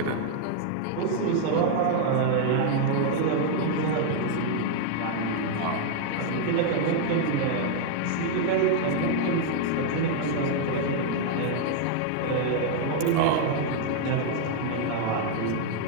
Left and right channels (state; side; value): different; both; correlation 0.00